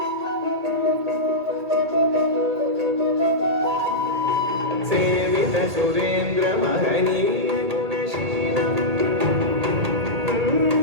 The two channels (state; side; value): late; left; 2.3 ms